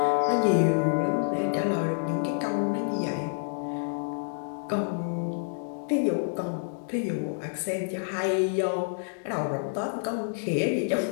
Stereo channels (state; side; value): silent; right; digital silence